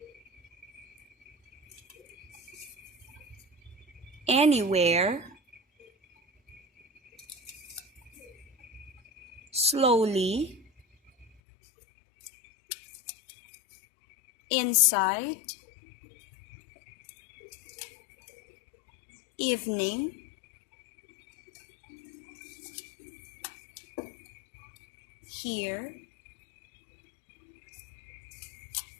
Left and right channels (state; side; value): drops out; right; at 11.2 s